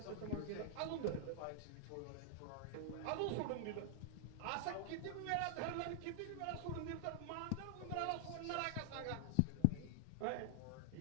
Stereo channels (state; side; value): different; both; correlation 0.00